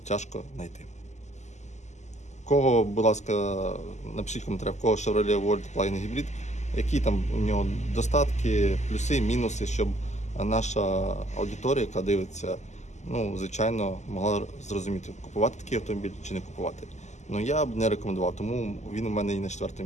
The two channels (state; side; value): late; right; 0.33 ms